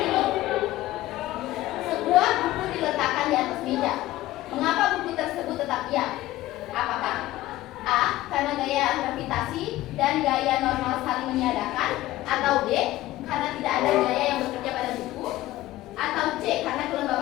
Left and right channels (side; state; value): right; quieter; 16.2 dB